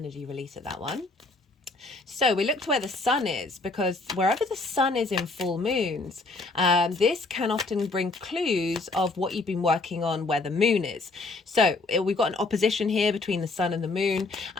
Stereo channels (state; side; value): quieter; right; 3.4 dB